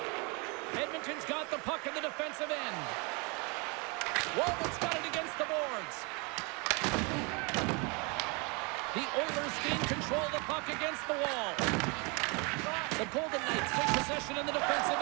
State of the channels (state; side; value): quieter; left; 30.8 dB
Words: Edmonton's got the puck in the defensive end. Walbot's got it against the boards. The Oilers gain control of the puck against the wall. The Golden Knights take possession in the defensive